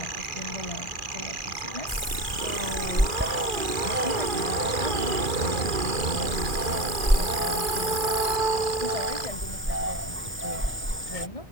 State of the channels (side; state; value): both; normal; correlation 0.26